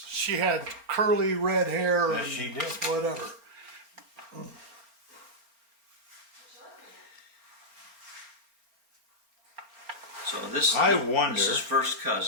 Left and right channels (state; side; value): late; left; 4.3 ms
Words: she had curly red hair Yes, and she did. whatever. So this, I wonder- This is first